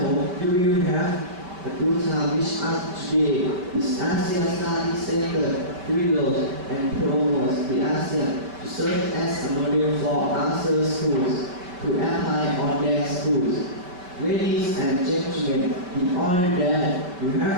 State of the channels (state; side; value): late; left; 5.3 ms